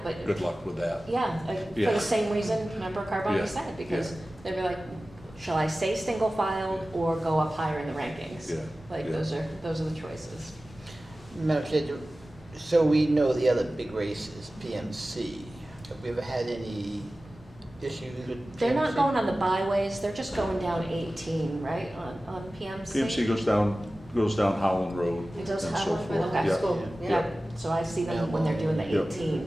but. Good luck with that. Yeah, for Yeah. the same reason Member Carboni Yeah. said, because Yeah. they'd be like, shall I stay single filed or go up higher in the rankings? Yeah. Like, Yeah. those are the choices. Madam Chair, so we know the other big race is PMC. Have we ever had any issues with PMC? They're not going on the byways, they're just going down 18, right, on PMC? PMC goes down Howland Road It does and have so one for forth. the high Yeah. school, yeah. So I see them when they're doing the Yep.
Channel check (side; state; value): both; normal; correlation 0.96